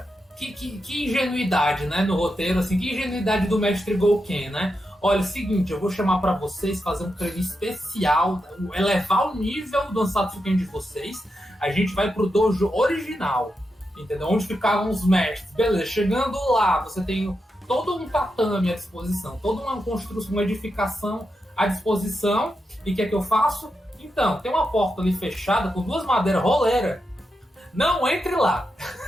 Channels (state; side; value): normal; both; correlation 0.86